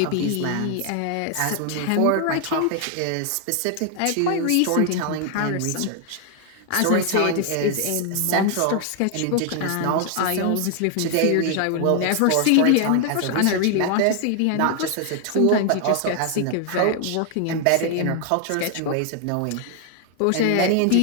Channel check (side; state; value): both; different; correlation 0.00